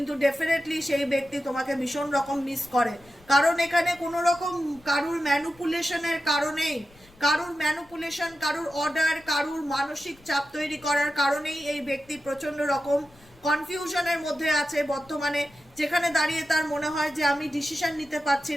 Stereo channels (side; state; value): left; noise; rumble, 27 dB below the sound